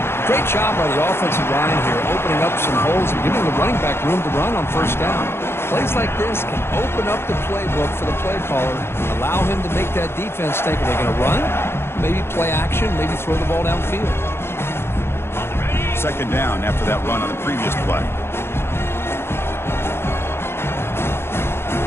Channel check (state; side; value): late; right; 0.12 ms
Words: Great job by the offensive line here, opening up some holes and giving the running back room to run on first down. Plays like this can open up the playbook for the play caller, allow him to make that defense think, are they going to run? Maybe play action, maybe throw the ball downfield. Second down after that run on the previous play.